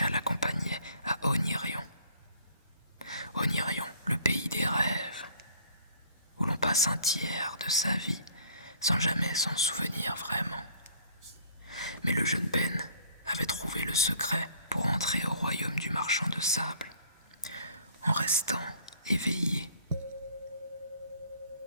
l'accompagnait à Onirion. Onirion, le pays des rêves, où l'on passe un tiers de sa vie sans jamais s'en souvenir vraiment. Mais le jeune Ben avait trouvé le secret pour entrer au royaume du marchand de sable, en restant éveillé.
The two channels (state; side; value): inverted; both; correlation -0.57